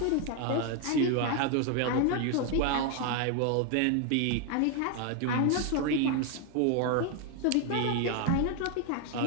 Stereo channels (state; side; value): different; both; correlation 0.01